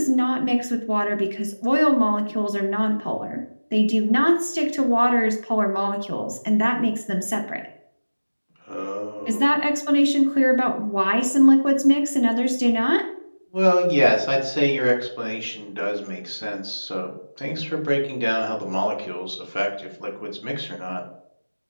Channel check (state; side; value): inverted; both; correlation -1.00